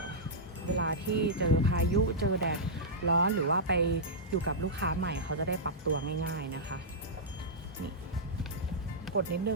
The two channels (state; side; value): normal; both; correlation -0.12